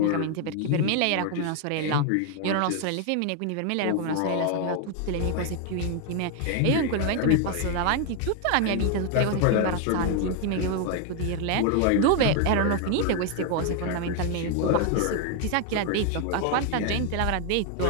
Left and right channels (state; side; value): different; both; correlation 0.00